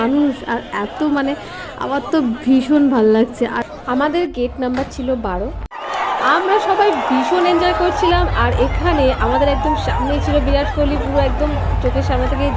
আর এত আমার তো ভীষণ ভাল লাগছে। আর আমাদের গেট নাম্বার ছিল 12। আমরা সবাই ভীষণ এনজয় করছিলাম। আর এখানে আমাদের একদম সামনেই ছিল বিরাট কোহলি, পুরো একদম চোখের সামনে থেকেই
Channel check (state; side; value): identical; both; correlation 1.00